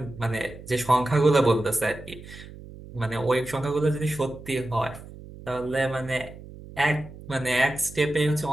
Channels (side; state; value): right; noise; hum, 16 dB below the sound